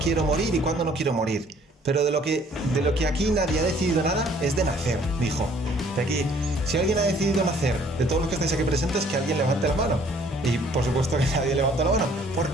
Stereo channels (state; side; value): normal; both; correlation 0.59